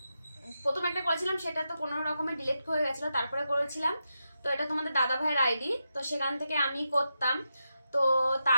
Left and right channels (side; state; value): both; inverted; correlation -0.87